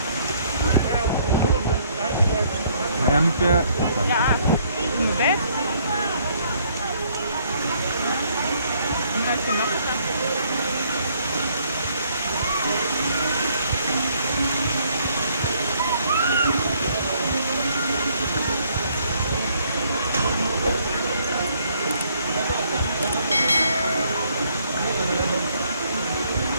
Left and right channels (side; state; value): both; inverted; correlation -0.66